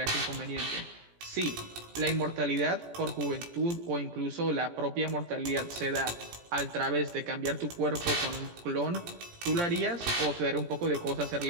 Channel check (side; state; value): left; late; 17 ms